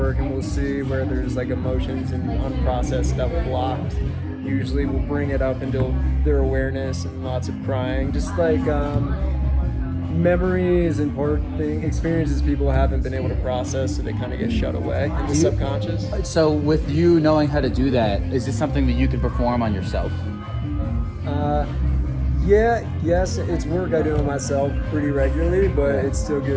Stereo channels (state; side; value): identical; both; correlation 1.00